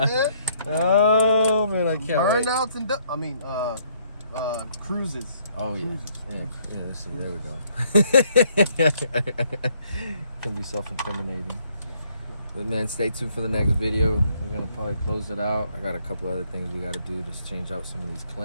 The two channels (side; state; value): both; inverted; correlation -0.67